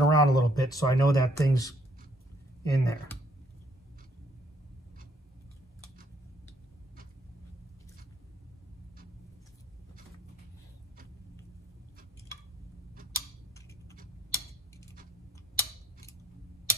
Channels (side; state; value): both; normal; correlation 0.67